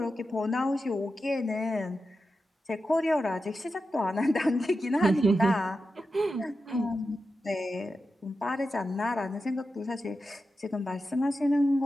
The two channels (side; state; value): both; normal; correlation 0.90